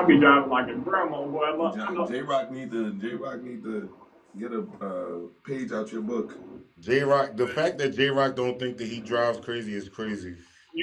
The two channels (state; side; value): identical; both; correlation 1.00